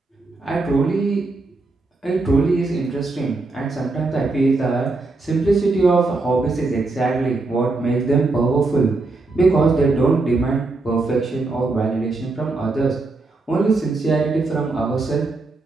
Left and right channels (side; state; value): left; quieter; 3.5 dB